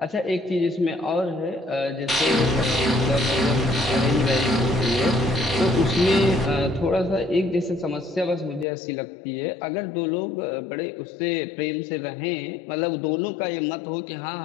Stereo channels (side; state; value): right; drops out; at 8.7 s